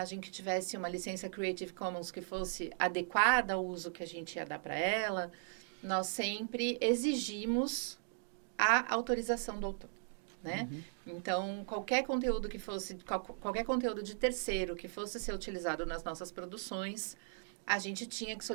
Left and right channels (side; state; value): left; silent; digital silence